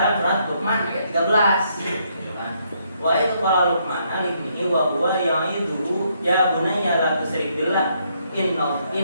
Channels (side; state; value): both; inverted; correlation -0.73